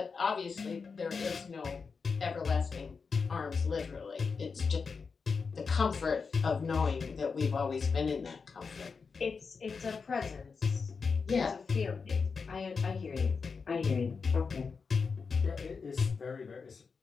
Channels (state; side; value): quieter; right; 5.1 dB